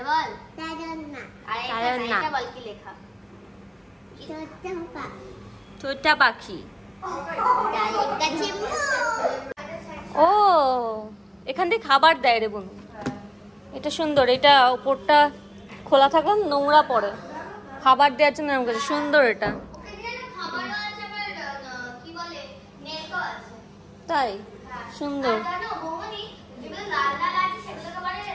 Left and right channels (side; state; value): both; identical; correlation 1.00